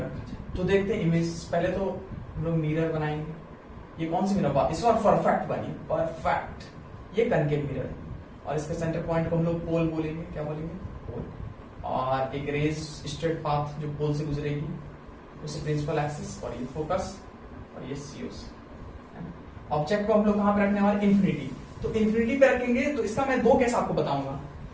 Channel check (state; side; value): identical; both; correlation 1.00